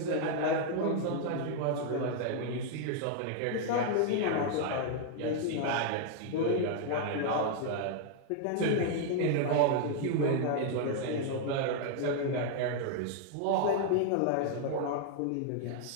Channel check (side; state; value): both; different; correlation 0.00